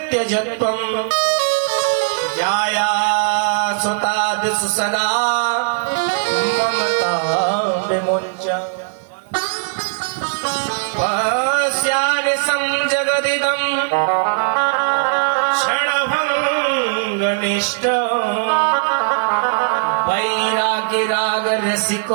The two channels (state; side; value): silent; left; digital silence